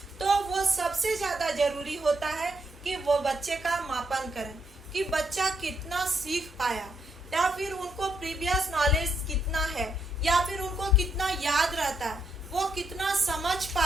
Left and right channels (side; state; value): both; normal; correlation 0.77